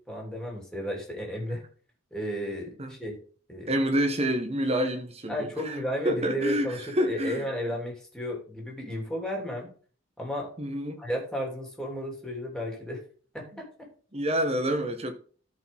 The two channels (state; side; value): normal; both; correlation 0.53